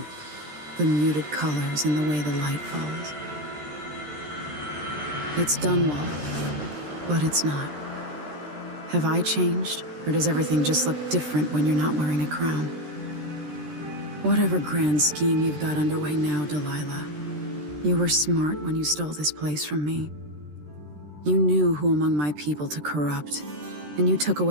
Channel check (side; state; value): left; late; 13 ms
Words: the muted colors and the way the light falls. It's Dunwall, but it's not. Have I changed, or does everything just look different when you're not wearing a crown? Whatever grand scheme you've got underway now, Delilah, you were smart when you stole this place from me. You knew who among my people to corrupt, and you took